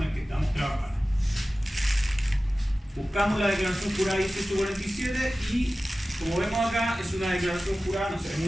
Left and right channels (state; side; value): normal; both; correlation 0.96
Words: el que estamos trabajando. Buscamos la declaración jurada 1847 y, como vemos acá, es una declaración jurada, no se ve